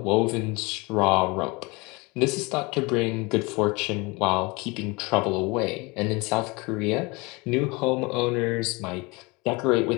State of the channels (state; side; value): quieter; right; 26.0 dB